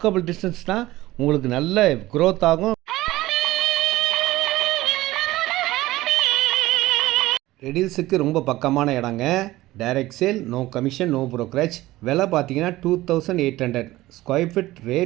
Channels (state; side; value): quieter; left; 17.3 dB